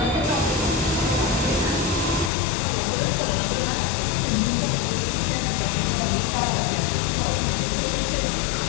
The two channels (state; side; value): drops out; right; at 2.3 s